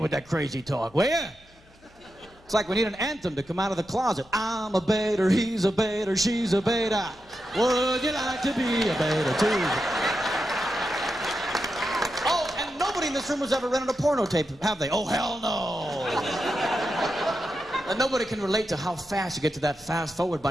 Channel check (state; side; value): noise; left; hum, 29 dB below the sound